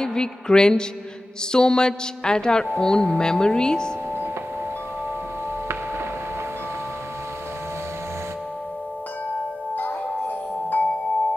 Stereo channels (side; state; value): both; normal; correlation 0.95